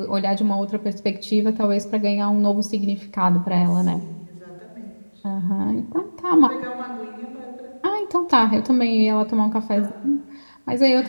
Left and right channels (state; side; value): inverted; both; correlation -1.00